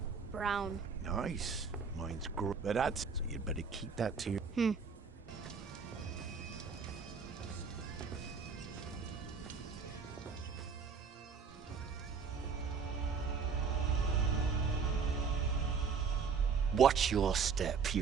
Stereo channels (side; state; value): left; quieter; 5.7 dB